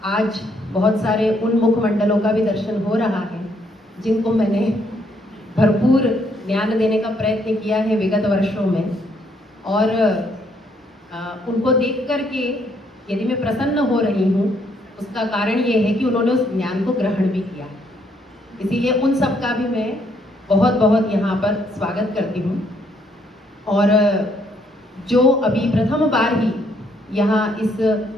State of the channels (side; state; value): both; normal; correlation 0.70